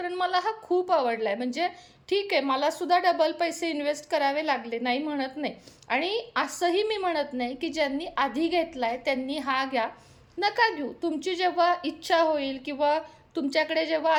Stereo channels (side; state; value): both; identical; correlation 1.00